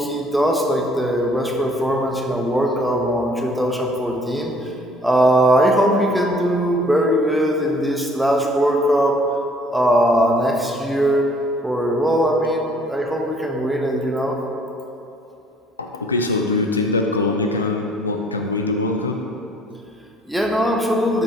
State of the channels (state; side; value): normal; both; correlation 0.59